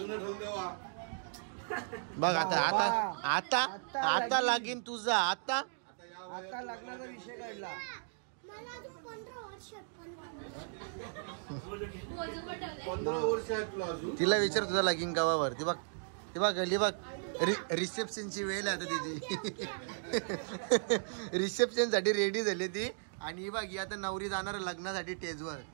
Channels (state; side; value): silent; left; digital silence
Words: बघ. आता आता आता आता लागीन तुझा. आता लग्नाचा विषय काढला. तिला विचार तुझा लगीन गावावर. ती बघ ती बघ गली बघ रिसेप्शनची वेळ आहे आता तिची. रिसेप्शन साठी रेडी झाली ती. आणि ही बघ ही आता नवरी जाणार लग्नासाठी स्टेजवर,